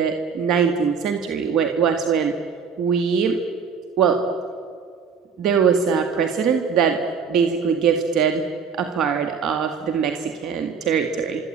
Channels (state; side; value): quieter; left; 6.1 dB